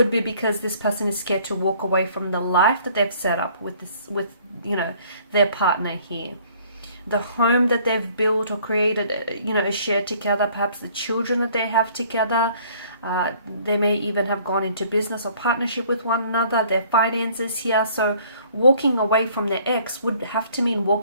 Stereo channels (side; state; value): both; inverted; correlation -0.57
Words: be because this person is scared to walk away from the life that they've set up with their partner here. The home that they've built or created, shared together, perhaps the children that they have together. They may even have gone into business or partnership with one another, their finances here. So walking away from their ex would have to mean